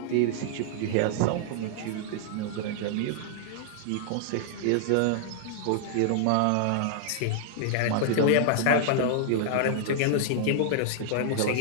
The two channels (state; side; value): different; both; correlation -0.01